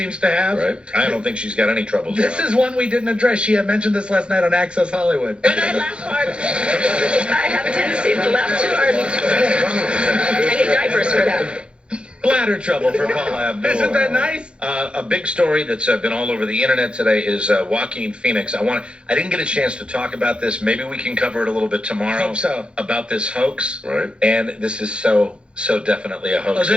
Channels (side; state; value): left; late; 0.056 ms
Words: to have. Right. I don't think she's got any troubles. This is one we didn't address. She had mentioned this last night on Access Hollywood. And I laugh hard. I have a tendency to laugh too hard. I need diapers for that. Bladder trouble for Paula Abdul. Isn't that nice? A big story that's been all over the internet today is Joaquin Phoenix. I didn't get a chance to talk about this. Maybe we can cover it a little bit tomorrow. Hope so. About this hoax. Right. And this is so definitely a hoax. Oh,